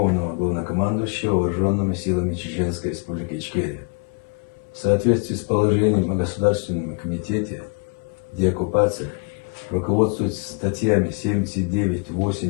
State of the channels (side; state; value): right; quieter; 36.7 dB